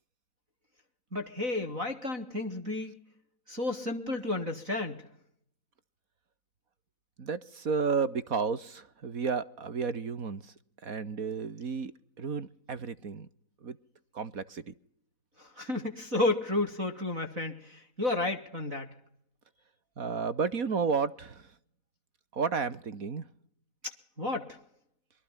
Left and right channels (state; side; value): late; left; 4.0 ms